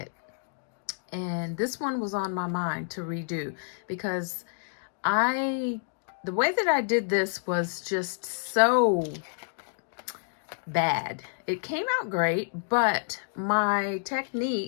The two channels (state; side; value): silent; right; digital silence